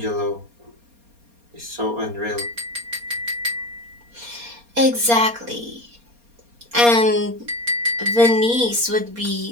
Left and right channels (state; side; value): late; left; 4.2 ms